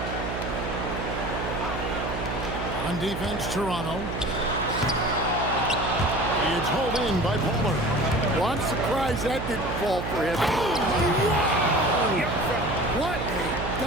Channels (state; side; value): noise; right; hum, 5 dB below the sound